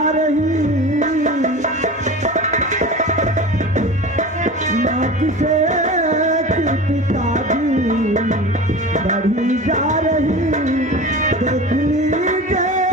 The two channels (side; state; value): both; normal; correlation 0.33